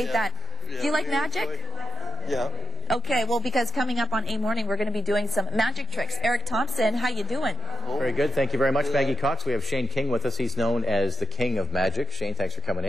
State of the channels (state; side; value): normal; both; correlation 0.88